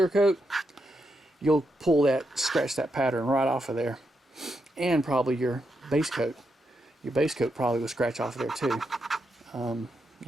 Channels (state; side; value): normal; both; correlation 0.83